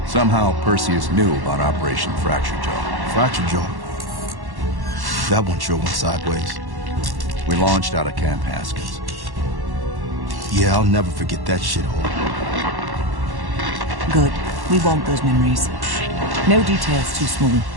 Somehow, Perseus knew about Operation Fracture Jaw. Fracture Jaw? That one sure went sideways. We launched out of Camp Haskins. Yeah, I'll never forget that shithole. Good. We want those memories. No details too small.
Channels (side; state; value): left; late; 1.1 ms